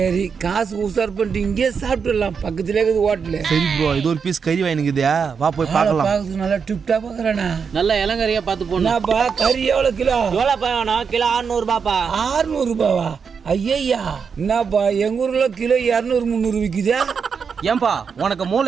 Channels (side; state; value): left; quieter; 6.1 dB